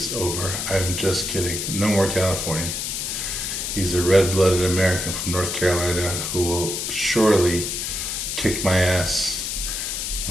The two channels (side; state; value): left; noise; hiss, 3 dB below the sound